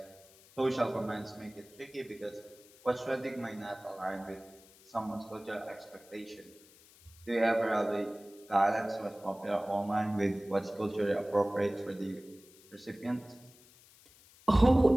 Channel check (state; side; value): noise; left; hiss, 25 dB below the sound